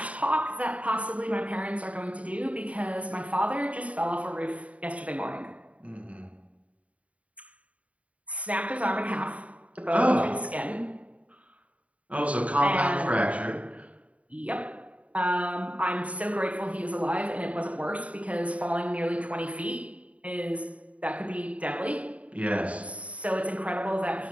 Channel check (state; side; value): late; left; 0.066 ms